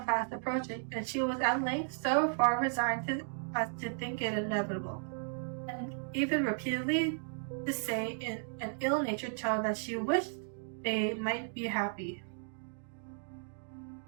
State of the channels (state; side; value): silent; left; digital silence